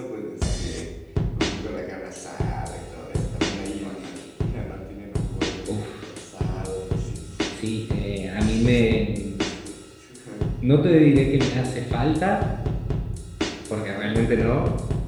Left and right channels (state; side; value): identical; both; correlation 1.00